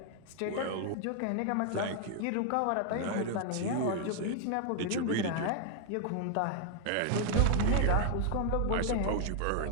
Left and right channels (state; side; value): different; both; correlation 0.00